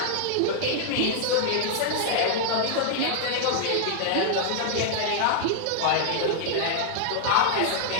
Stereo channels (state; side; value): different; both; correlation -0.01